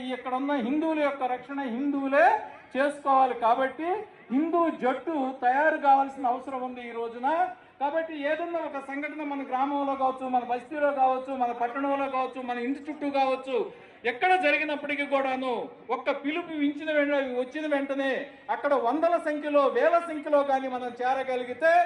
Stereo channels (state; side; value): identical; both; correlation 1.00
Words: ఇక్కడ ఉన్న హిందువుల యొక్క రక్షణ హిందువులే చేసుకోవాలి. కాబట్టి హిందూ జట్టు తయారు కావాల్సిన అవసరం ఉంది ఈ రోజున. కాబట్టి ఏదన్నా ఒక సంఘటన మన గ్రామంలో కావచ్చు, మన బస్తీలో కావచ్చు, మన పట్టణంలో కావచ్చు, మన ఇంటి చుట్టూ కావచ్చు, ఎక్కడ జరిగినప్పటికీ కూడాను ఒక్క పిలుపు వచ్చిన వెంటనే అక్కడ వందల సంఖ్యలో, వేల సంఖ్యలో కానీ మనం చేరగలిగితే